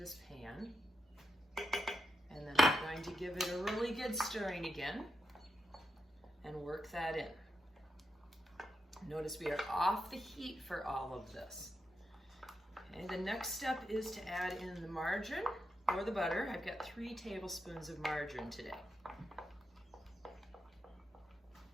pan. And then I'm going to give it a really good stirring again and work that in. Notice we are off the heat for all of this. Okay, the next step is to add in the margarine or the butter. I've got 3 tablespoons of margarine today.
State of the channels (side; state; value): both; normal; correlation 0.85